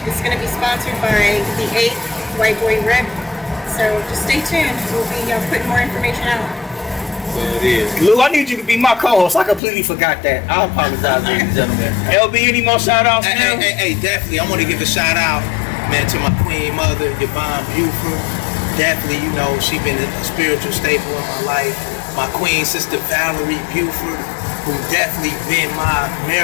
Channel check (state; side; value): drops out; right; at 9.6 s